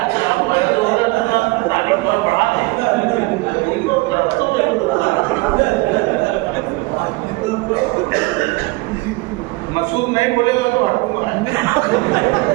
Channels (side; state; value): left; quieter; 23.8 dB